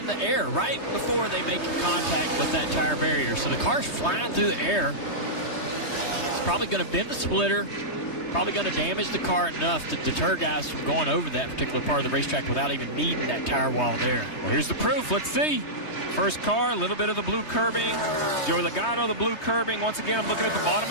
the air right before they make contact with that tire barrier. So the car's flying through the air. It's probably going to bend the splitter, probably going to damage the car enough to deter guys from going over that particular part of the racetrack without even needing that tire wall there. Well, here's the proof. Let's see. First car, a little bit of the blue curbing. Joey Logano, the blue curbing. Once again, I'm looking at the bottom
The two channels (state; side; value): late; right; 3.2 ms